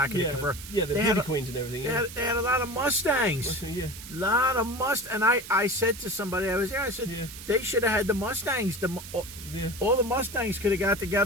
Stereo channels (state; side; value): noise; right; hiss, 13 dB below the sound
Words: of the converter? Yeah, the beauty queens and everything. Yeah. They had a lot of Mustangs. Yeah. Lot of And I said to somebody, I was there, I said, they should have had the Mustangs. All the Mustangs could have got